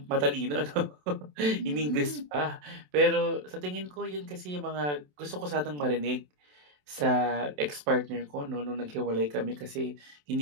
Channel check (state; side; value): late; left; 27 ms